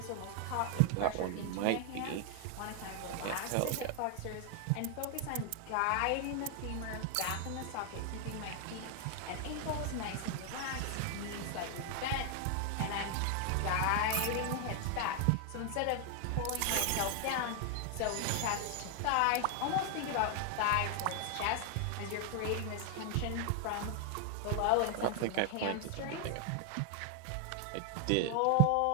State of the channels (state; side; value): different; both; correlation 0.00